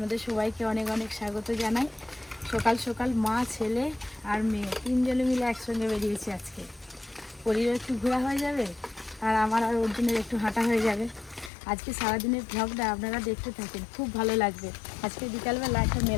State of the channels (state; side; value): drops out; right; at 11.5 s